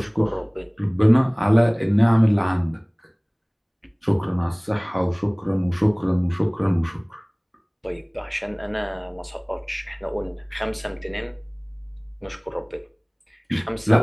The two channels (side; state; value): both; identical; correlation 1.00